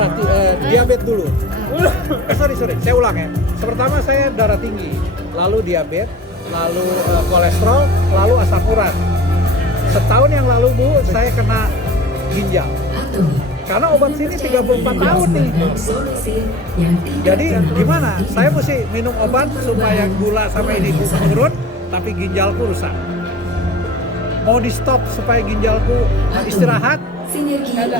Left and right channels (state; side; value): normal; both; correlation 0.40